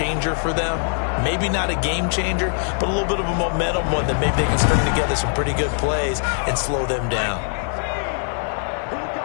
for them? Maybe not a game changer, but a little bit of a momentum one that maybe they can string together some pretty good plays and slow them down. Here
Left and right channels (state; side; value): silent; right; 58 dB below the other